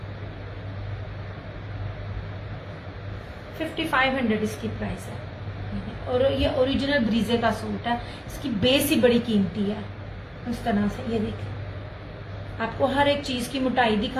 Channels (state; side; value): identical; both; correlation 1.00